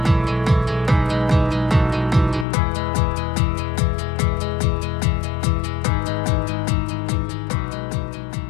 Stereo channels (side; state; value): right; drops out; at 2.5 s